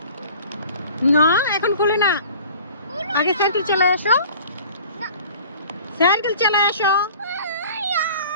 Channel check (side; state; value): both; inverted; correlation -0.46